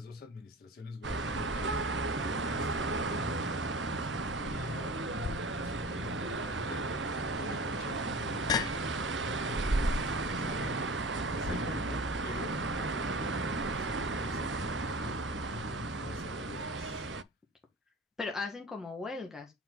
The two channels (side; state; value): both; normal; correlation 0.36